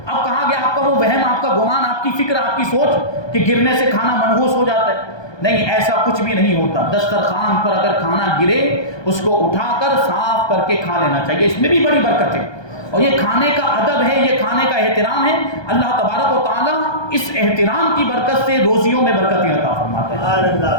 اب کہاں گیا آپ کا وہ وہم, آپ کا گمان, آپ کی فکر, آپ کی سوچ کہ گرنے سے کھانا منحوس ہو جاتا ہے؟ نہیں, ایسا کچھ بھی نہیں ہوتا. دسترخوان پر اگر کھانا گرے اس کو اٹھا کر صاف کر کے کھا لینا چاہیے, اس میں بھی بڑی برکت ہے. اور یہ کھانے کا ادب ہے, یہ کھانے کا احترام ہے. اللہ تبارک و تعالیٰ اس احترام کی برکت سے روزیوں میں برکتیں عطا فرماتے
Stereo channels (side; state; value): right; late; 1.2 ms